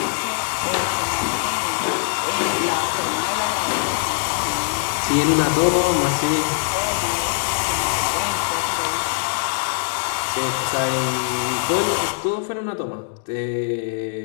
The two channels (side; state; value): right; silent; digital silence